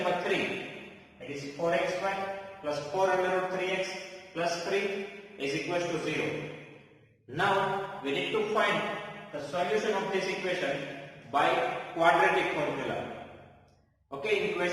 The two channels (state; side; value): identical; both; correlation 1.00